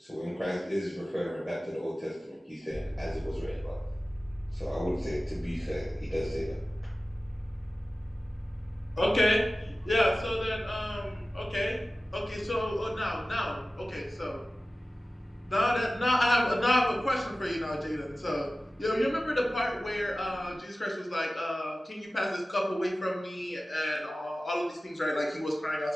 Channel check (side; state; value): both; normal; correlation 0.96